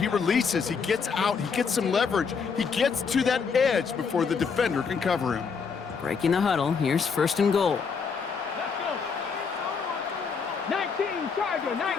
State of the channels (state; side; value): quieter; right; 5.7 dB